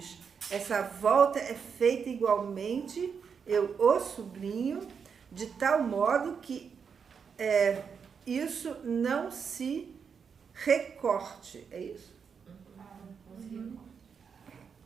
essa volta é feita igualmente, eu o sublinho, de tal modo que isso não se recorte. É isso?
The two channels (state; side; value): quieter; left; 6.4 dB